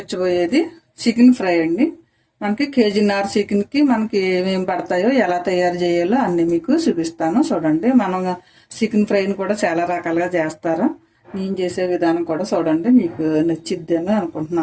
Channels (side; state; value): both; identical; correlation 1.00